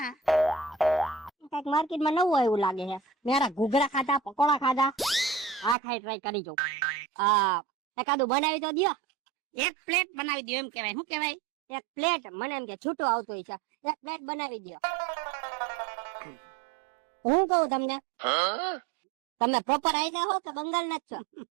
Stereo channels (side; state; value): left; drops out; at 5.8 s